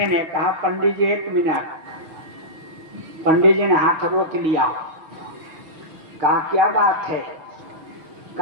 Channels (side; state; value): left; late; 6.2 ms